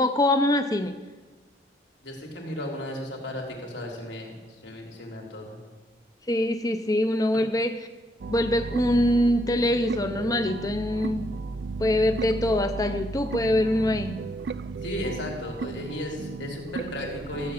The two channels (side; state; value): both; normal; correlation 0.70